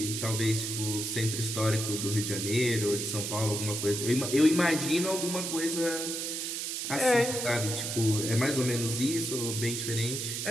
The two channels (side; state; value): right; noise; hiss, 3 dB below the sound